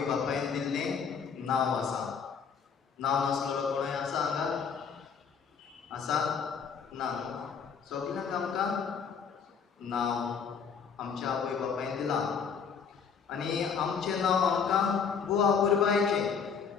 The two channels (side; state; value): right; quieter; 6.4 dB